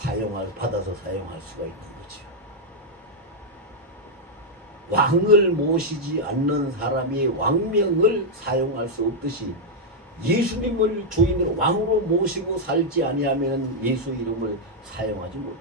받아서 사용할 수가 있는 거죠. 왕을 모시지 않는 사람이 왕명을 사용할 수 없듯이 예수님을 주인으로 왕으로 모시고 살지 아니하면 예수 이름을 사용하지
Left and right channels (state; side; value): normal; both; correlation -0.03